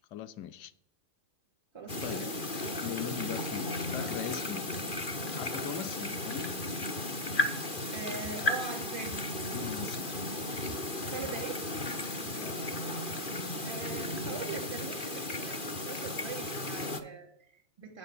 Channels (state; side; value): late; right; 2.4 ms